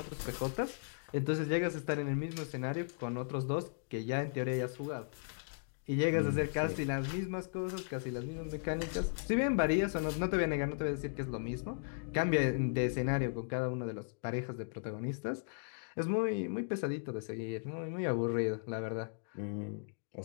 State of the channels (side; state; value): right; silent; digital silence